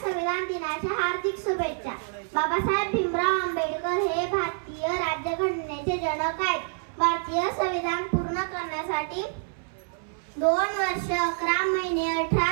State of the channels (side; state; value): left; silent; 60 dB below the other